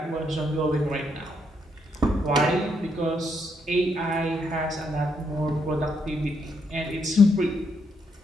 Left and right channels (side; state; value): both; normal; correlation 0.76